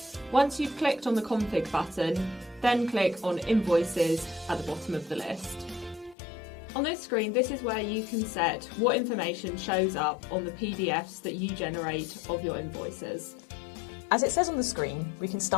Once you've clicked on the Config button, then click on Invoices at the bottom of the list. On this screen, this is where you can set what information shows up on the PDFs that you generate of your invoices. As it says on the screen, we can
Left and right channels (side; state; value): right; drops out; at 6.2 s